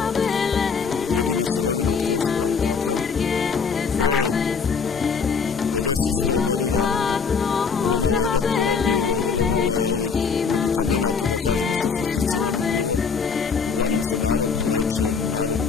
jedina sirovina od koje se pravi katran. Pre 50-100 godina vrlo malo je doktora bilo, vrlo malo je ovih medikamenata, da kažemo, sofisticiranih bilo. Uglavnom se narod lečio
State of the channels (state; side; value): quieter; right; 5.6 dB